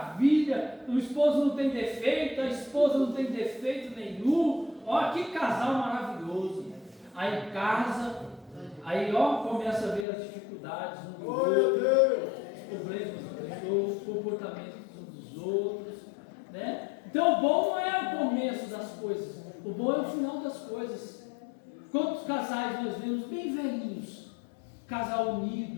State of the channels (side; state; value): right; drops out; at 10.1 s